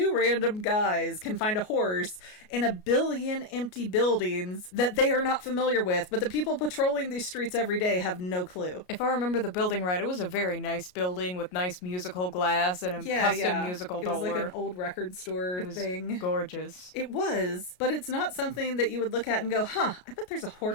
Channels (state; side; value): late; right; 33 ms